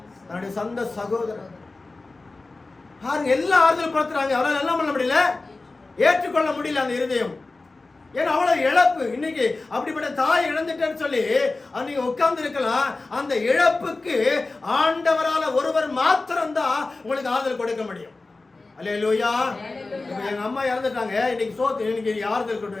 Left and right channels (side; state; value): right; quieter; 3.4 dB